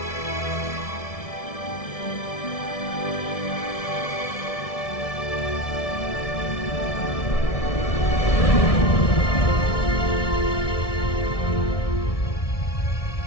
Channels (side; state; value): right; late; 1.7 ms